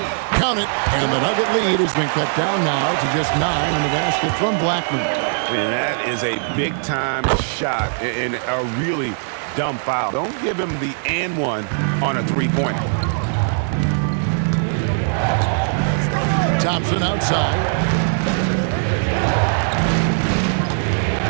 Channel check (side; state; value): left; silent; digital silence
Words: Count it, and the Nugget lead has been cut down now to just 9 in the basket from Blackman. And that is a big-time shot and a really dumb foul. Don't give him the and one on a three-pointer. Thompson outside.